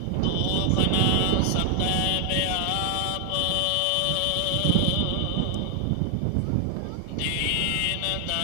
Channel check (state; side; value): different; both; correlation 0.00